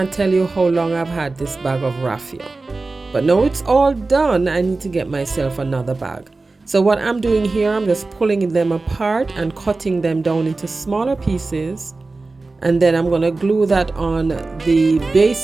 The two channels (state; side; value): quieter; left; 3.5 dB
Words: tell you how long I've had this bag of raffia. But now it's all done. I need to get myself another bag. So what I'm doing here, I'm just pulling them apart and cutting them down into smaller pieces. And then I'm going to glue that on the